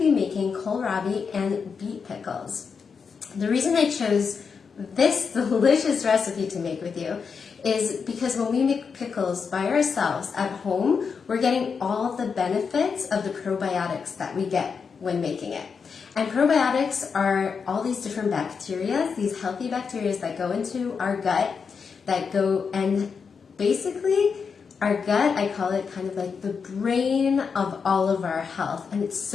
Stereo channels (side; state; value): right; quieter; 5.8 dB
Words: making kohlrabi and beet pickles. The reason I chose this delicious recipe to make with you is because when we make pickles by ourselves at home, we're getting all the benefits of the probiotics that we get when making it. And probiotics are all these different bacteria, these healthy bacteria that go into our gut, that go and basically our gut, I call it kind of like the brain of all of our health. And it's